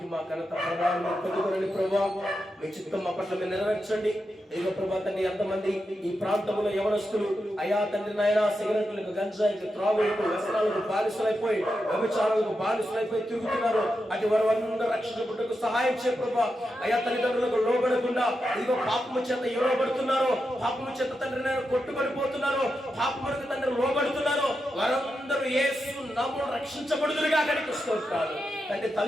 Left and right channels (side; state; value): both; normal; correlation 0.87